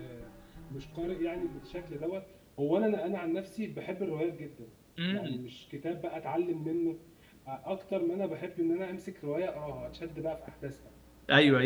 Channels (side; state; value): both; identical; correlation 1.00